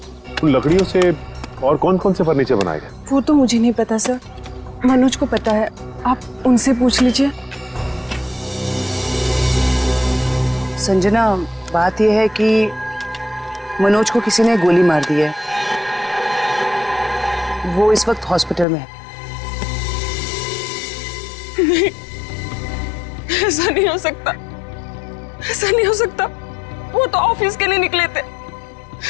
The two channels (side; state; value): right; drops out; at 18.7 s